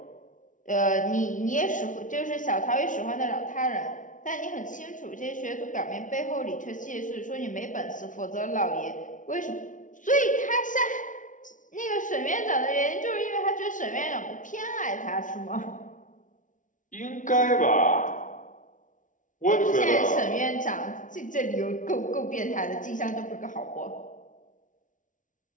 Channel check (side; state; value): right; late; 0.37 ms